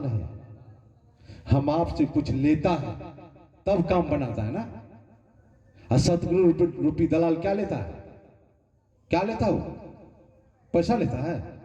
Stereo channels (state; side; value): identical; both; correlation 1.00